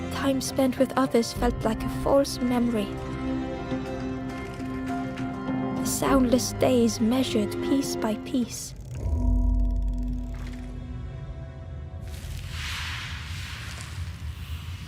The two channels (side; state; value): both; identical; correlation 1.00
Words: Time spent with others felt like a false memory. The soundless days measured piece by piece.